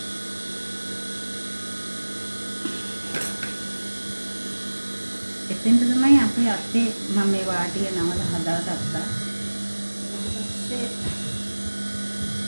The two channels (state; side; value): inverted; both; correlation -1.00